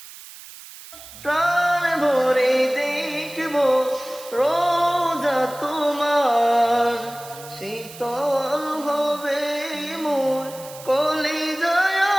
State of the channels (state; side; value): noise; right; hiss, 17 dB below the sound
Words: প্রাণ ভরে দেখবো রোজা তোমার, শীতল হবে মোর কলিজায়